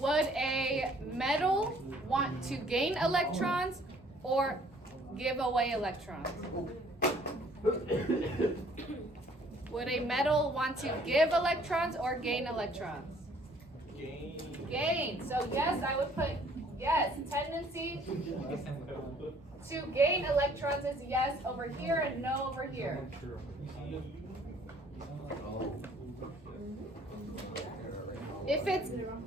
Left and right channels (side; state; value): both; normal; correlation 0.59